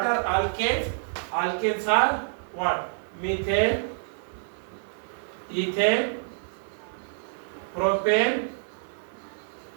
are alkanes? Alkanes are what? Methane, ethane, propane,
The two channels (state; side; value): silent; left; digital silence